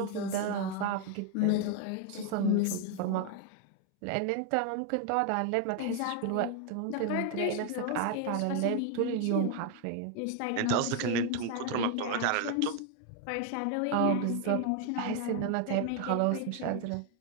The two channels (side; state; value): both; different; correlation 0.01